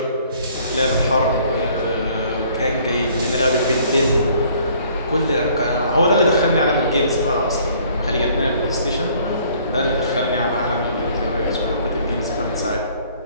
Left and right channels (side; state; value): both; inverted; correlation -0.59